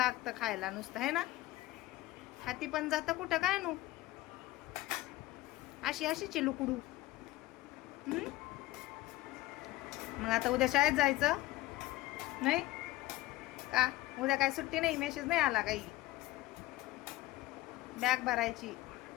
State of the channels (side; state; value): right; quieter; 17.3 dB